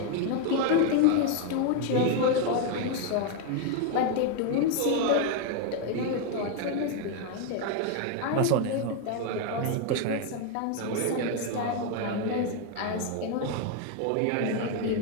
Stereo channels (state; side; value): different; both; correlation 0.01